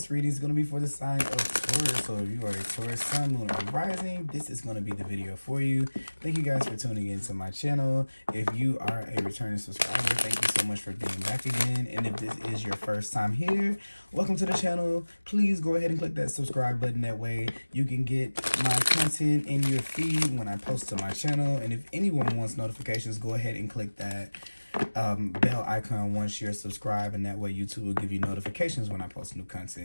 reading is going to be for the sign of Taurus. So if you are a Taurus sun, moon, or rising, this is going to be the video for you. Thank you guys for tuning into my channel. If you are a returning subscriber, thank you so much for being back again. And if this is your first time here, welcome to the channel. Please go ahead and click that subscribe button. That way you can get my content in your feed when I post to my channel. And if anyone wants notifications, go ahead and click that bell icon once you're subscribed, and that way YouTube will give you notifications when I post new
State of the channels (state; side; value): inverted; both; correlation -1.00